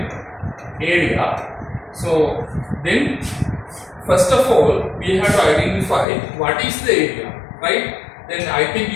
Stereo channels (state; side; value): drops out; right; at 6.1 s